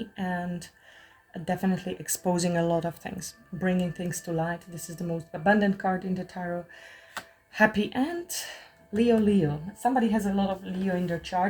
and definitely exposing a lot of things, bringing things to light. This is the most abundant card in the tarot. Happy, and Leo. Somebody has a lot of Leo in their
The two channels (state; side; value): identical; both; correlation 1.00